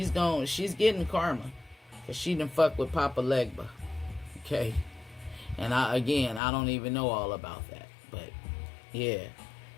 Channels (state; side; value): drops out; right; at 6.4 s